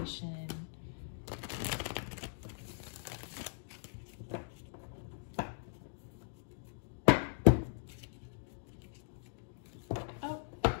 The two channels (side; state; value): right; silent; digital silence